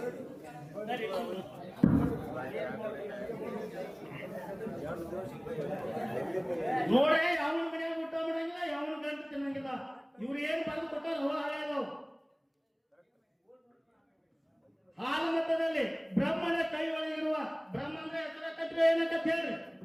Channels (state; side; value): identical; both; correlation 1.00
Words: ನೋಡ್ರಿ, ಯಾವನ ಮನೆಯಾಗ ಊಟ ಮಾಡಂಗಿಲ್ಲ, ಯಾವನ ಗಂಟು ತಿನ್ನಂಗಿಲ್ಲ. ಇವ್ರು ಏನ್ ಬರೆದು ಕೊಟ್ಟಾರ ಹೋ ಹಾಳಾದವು. ಹಾಲು ಮತದಲ್ಲಿ ಬ್ರಹ್ಮನ ಕೈ ಒಳಗಿರುವ ಬ್ರಹ್ಮ ಅಂದ್ರೆ ಹೆಸರ ಕಟ್ರೆ ಏನಂತ ಹೇಳ್ರಿ.